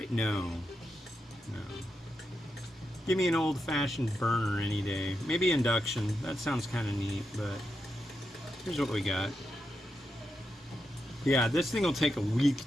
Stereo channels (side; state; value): both; normal; correlation 0.86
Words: No. Give me an old-fashioned burner any day. Maybe induction. That sounds kind of neat, but here's what we got. Yeah, this thing will take a week